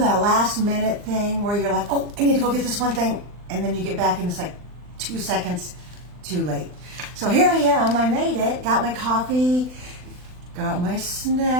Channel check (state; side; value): late; left; 39 ms